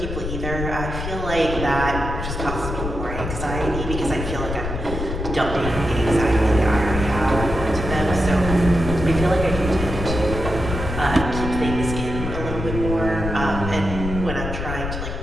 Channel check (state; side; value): noise; left; rumble, 5 dB below the sound